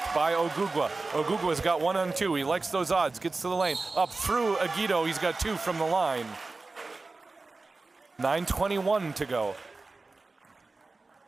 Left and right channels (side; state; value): left; quieter; 3.6 dB